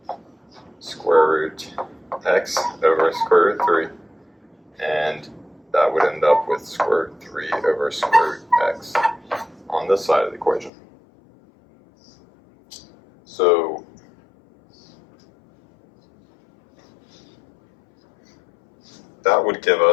square root x over square root 3, and that would end up with square root 3 over square root x on this side of the equation. So that would give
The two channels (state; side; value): drops out; right; at 10.7 s